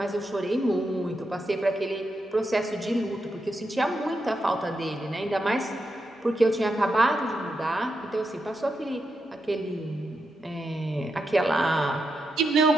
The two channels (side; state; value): both; normal; correlation 0.85